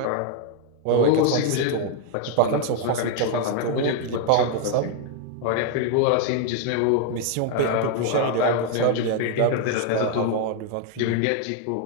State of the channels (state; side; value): different; both; correlation 0.01